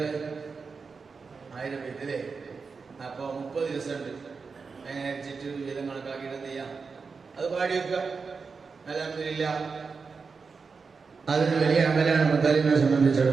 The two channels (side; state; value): left; quieter; 5.0 dB